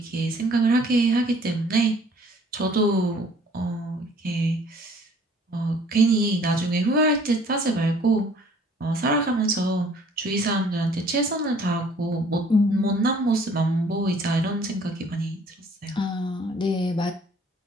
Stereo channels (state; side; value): normal; both; correlation 0.56